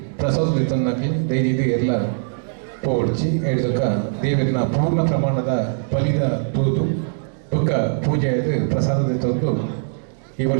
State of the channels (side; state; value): left; silent; digital silence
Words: ಪ್ರಸಾದ ತನ್ನಕ್ಕೆ ದಯಜೀದು ಎಲ್ಲ ಪೋಡ್ಚಿ ಹೇಳಿದಕ್ಕ ದೇವಿಯನ್ನ ಪೂರ್ಣ ಪ್ರಮಾಣದ ಬಲಿದ ತೂದು ದುಃಖ ಪೂಜೆ ಆಯ್ತು ಪ್ರಸಾದದ ತಂದು ಈ